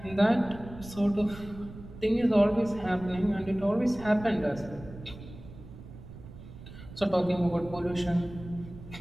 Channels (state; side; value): noise; right; rumble, 15 dB below the sound